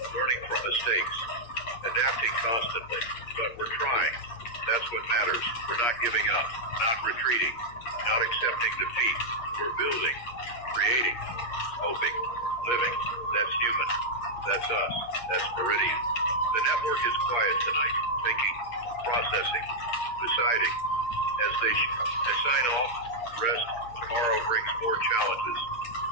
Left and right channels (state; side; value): late; right; 8.6 ms